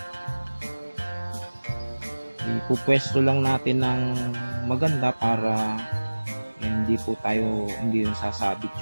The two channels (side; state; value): both; inverted; correlation -1.00